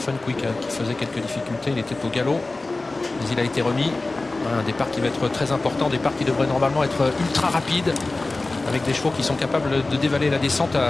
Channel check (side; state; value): right; quieter; 3.2 dB